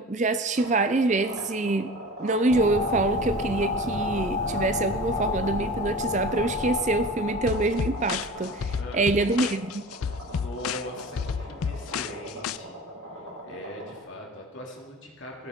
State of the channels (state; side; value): normal; both; correlation 0.37